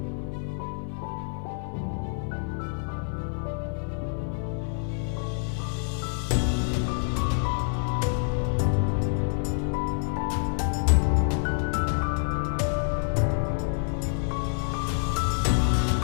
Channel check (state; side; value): silent; right; digital silence